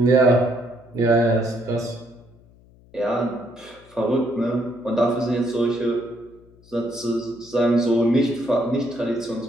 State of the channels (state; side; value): noise; left; hum, 27 dB below the sound